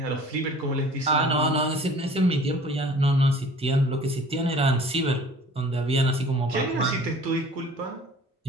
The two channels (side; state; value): both; normal; correlation 0.48